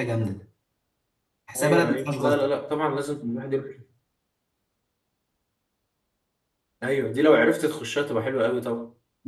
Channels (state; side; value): identical; both; correlation 1.00